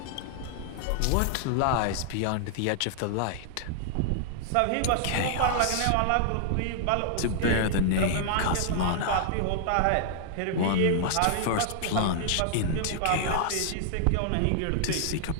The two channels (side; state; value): both; different; correlation -0.01